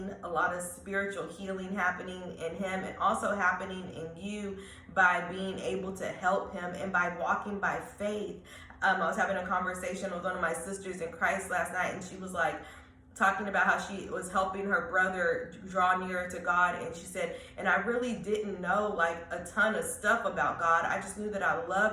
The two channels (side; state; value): both; identical; correlation 1.00